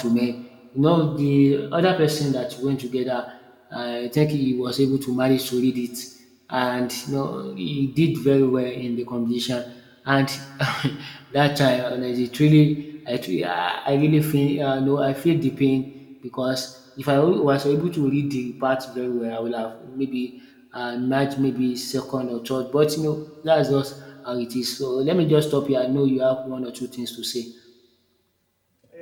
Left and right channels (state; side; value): identical; both; correlation 1.00